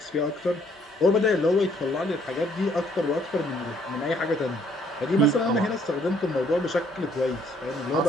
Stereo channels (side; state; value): both; normal; correlation 0.65